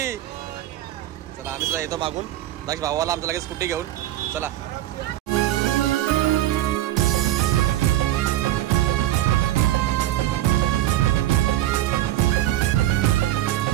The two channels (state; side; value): quieter; left; 14.0 dB